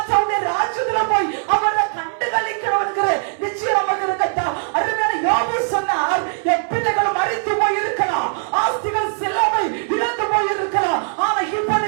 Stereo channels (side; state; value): left; silent; 66 dB below the other